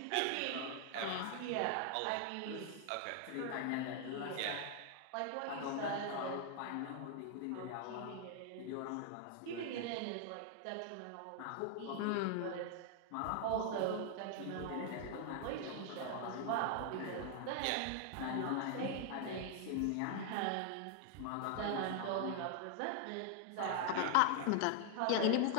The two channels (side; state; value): both; different; correlation 0.00